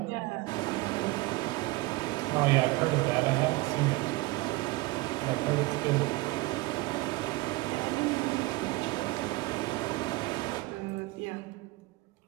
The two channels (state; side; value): quieter; left; 21.3 dB